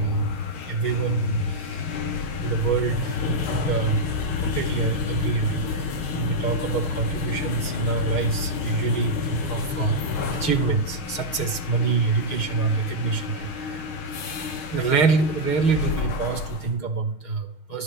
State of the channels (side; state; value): right; late; 6.5 ms